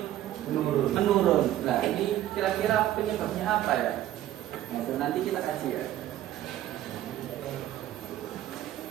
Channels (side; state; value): left; quieter; 13.1 dB